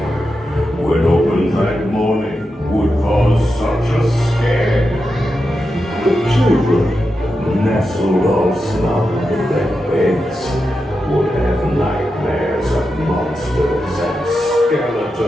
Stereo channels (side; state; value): both; normal; correlation 0.89